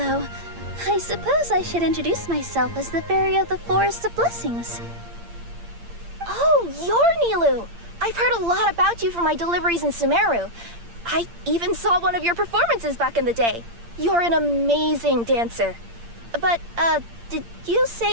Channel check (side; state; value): left; late; 8.7 ms